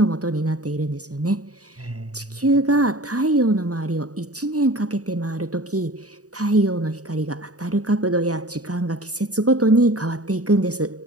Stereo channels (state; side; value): late; left; 0.67 ms